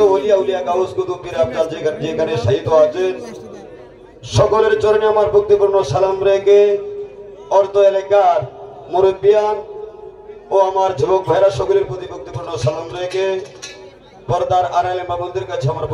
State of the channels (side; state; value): both; identical; correlation 1.00